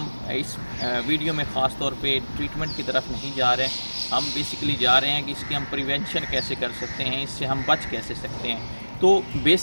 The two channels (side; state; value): both; inverted; correlation -1.00